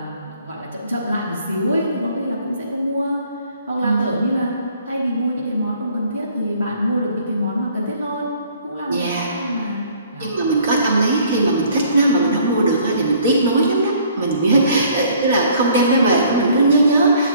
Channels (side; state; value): both; inverted; correlation -0.58